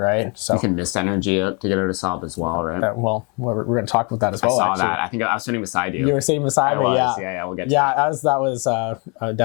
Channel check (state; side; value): quieter; right; 33.2 dB